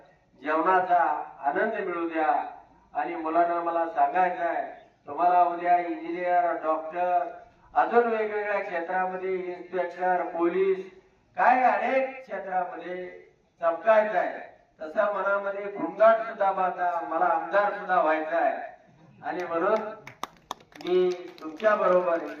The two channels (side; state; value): both; identical; correlation 1.00